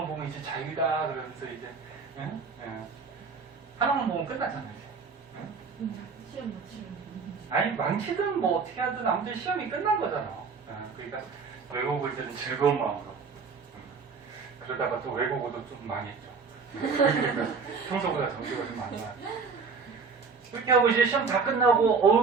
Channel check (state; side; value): quieter; left; 5.1 dB